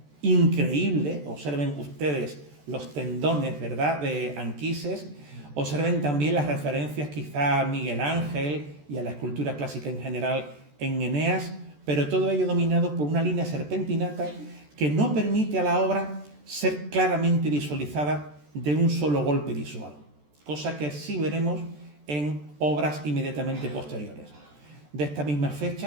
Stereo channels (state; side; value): late; left; 14 ms